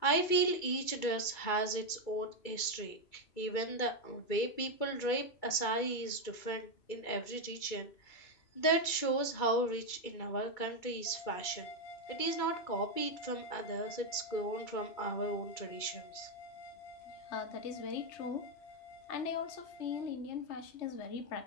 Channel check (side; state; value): right; late; 2.3 ms